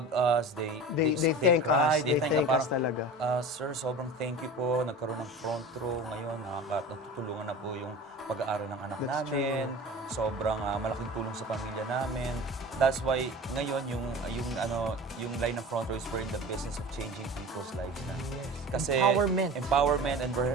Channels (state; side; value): normal; both; correlation 0.35